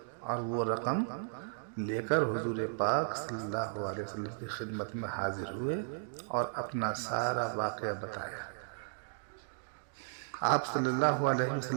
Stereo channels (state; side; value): silent; left; digital silence